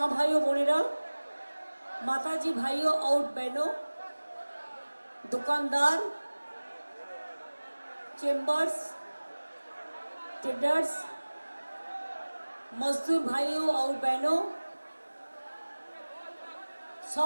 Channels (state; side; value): inverted; both; correlation -1.00